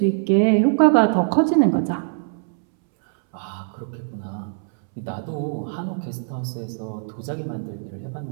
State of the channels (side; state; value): left; silent; 64 dB below the other